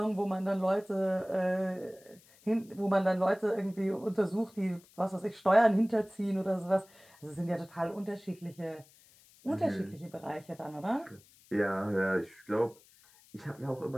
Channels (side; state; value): left; noise; hiss, 27 dB below the sound